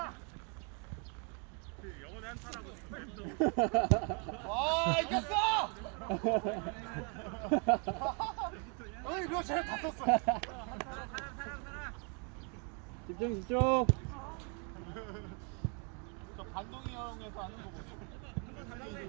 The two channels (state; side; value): quieter; left; 36.5 dB